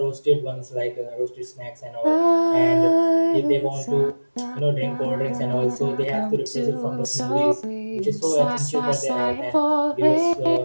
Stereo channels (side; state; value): both; inverted; correlation -1.00